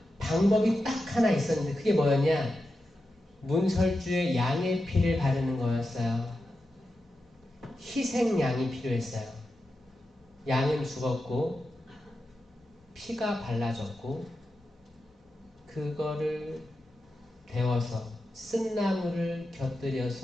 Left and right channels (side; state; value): both; normal; correlation 0.90